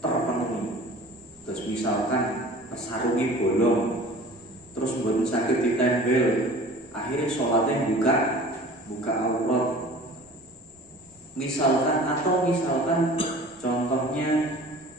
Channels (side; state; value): both; normal; correlation 0.44